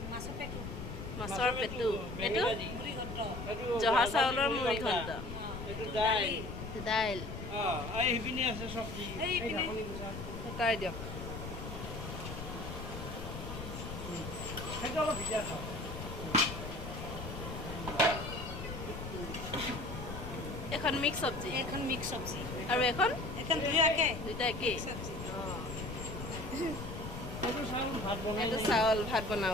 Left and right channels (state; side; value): noise; left; rumble, 8 dB below the sound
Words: মাছৰ পেটু এইটো জহা চাউলৰ মুড়ি ঘণ্ট দাইল তাই দিয়ক এখন মিক্স চব্জি আৰু এখন দুইটা একেই এইটো চাউল ভাত